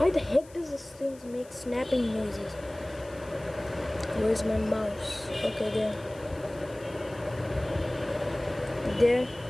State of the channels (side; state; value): left; noise; hiss, 24 dB below the sound